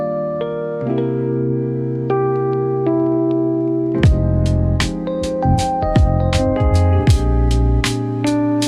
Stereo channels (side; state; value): both; identical; correlation 1.00